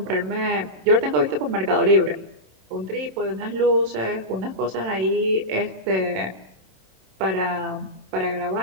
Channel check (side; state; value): left; late; 27 ms